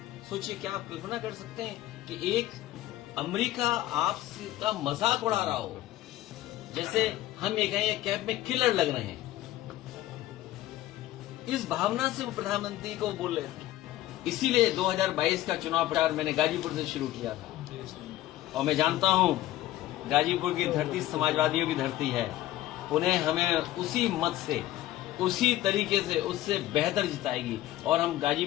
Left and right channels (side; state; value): right; quieter; 14.8 dB